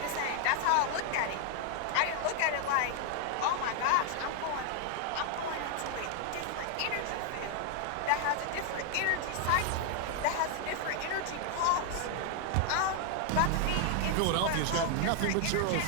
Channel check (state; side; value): different; both; correlation 0.00